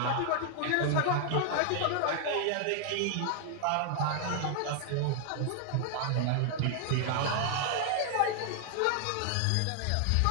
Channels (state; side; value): different; both; correlation 0.00